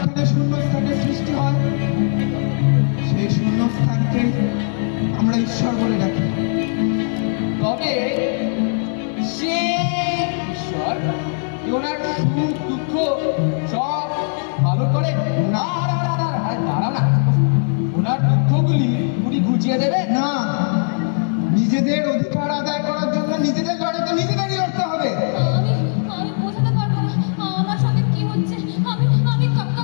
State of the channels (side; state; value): right; silent; 66 dB below the other